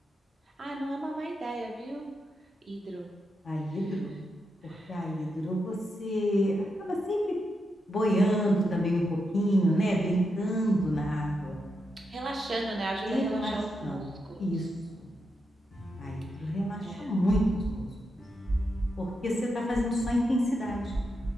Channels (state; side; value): normal; both; correlation 0.85